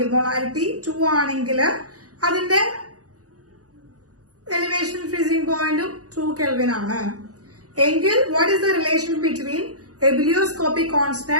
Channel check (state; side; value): late; left; 0.67 ms